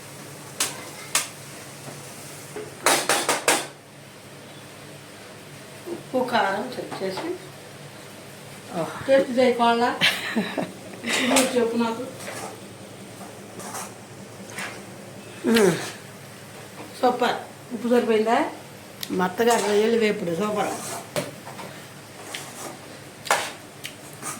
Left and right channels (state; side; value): identical; both; correlation 1.00